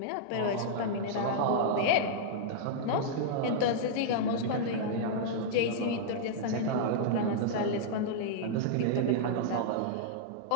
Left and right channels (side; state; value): both; different; correlation -0.02